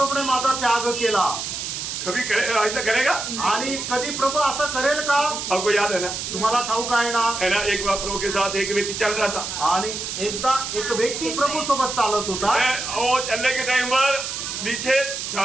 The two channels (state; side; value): noise; right; hiss, 5 dB below the sound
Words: माझा त्याग केला. कभी ऐसा करेगा? आणि कधी प्रभू असं करेल का? आपको याद है ना, तुम्हाला ठाऊक आहे ना, है ना, एक बार प्रभु के साथ एक व्यक्ति चल रहा था आणि एकदा एक व्यक्ती प्रभू सोबत चालत होता वो चलने के टाइम पर नीचे